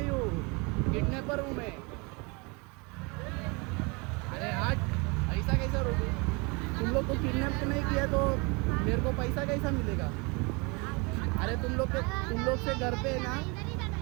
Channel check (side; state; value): left; quieter; 29.3 dB